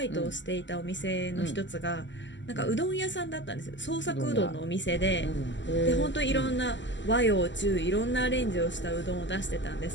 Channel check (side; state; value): right; late; 0.54 ms